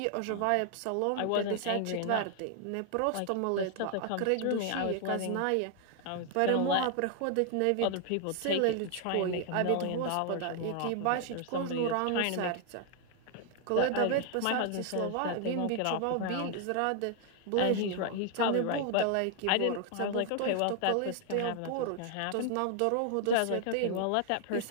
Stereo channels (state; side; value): different; both; correlation 0.00